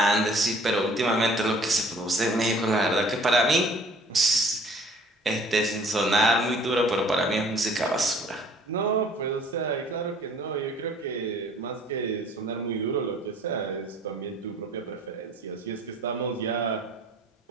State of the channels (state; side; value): normal; both; correlation 0.54